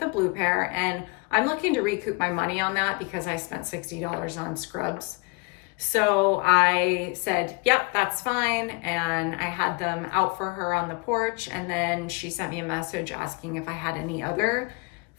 blue pair, and I'm looking to recoup my money on that because I spent $60 on scrubs. So I said, yep, that's fine. And I had them out for her on the porch. And then she sent me a message asking if I had any other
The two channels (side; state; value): right; quieter; 28.7 dB